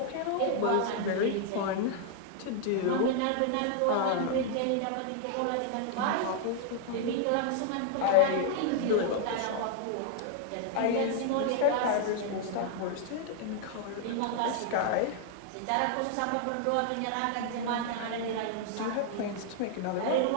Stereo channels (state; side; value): different; both; correlation -0.01